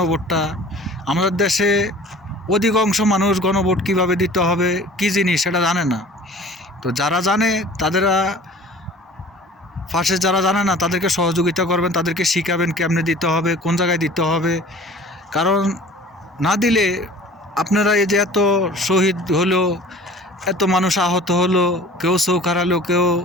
আমাদের দেশে অধিকাংশ মানুষ গণভোট কীভাবে দিতে হবে, কী জিনিস সেটা জানে না। তো যারা জানে তাদেরা যারা জানে না তাদেরকে সহযোগিতা করবেন, তাদেরকে শিখাবেন কেমনে দিতে হবে, কোন জায়গায় দিতে হবে। কারণ না দিলে আপনারা এই যে এত শহীদ হলো, এত মানুষ আহত হলো, কেউ চোখ হারালো, কেউ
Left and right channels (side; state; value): both; normal; correlation 0.46